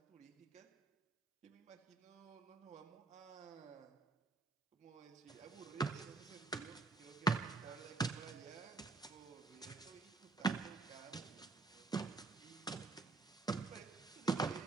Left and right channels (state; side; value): quieter; left; 4.0 dB